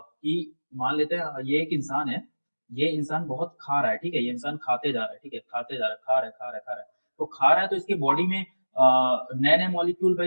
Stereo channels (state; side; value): inverted; both; correlation -1.00